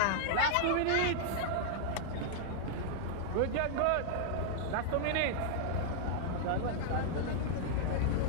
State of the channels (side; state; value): both; different; correlation -0.01